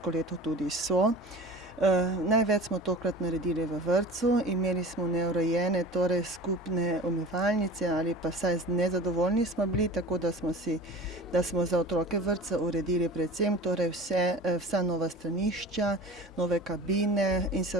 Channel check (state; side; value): normal; both; correlation 0.38